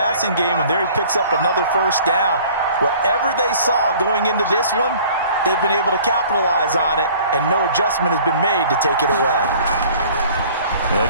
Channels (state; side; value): inverted; both; correlation -0.50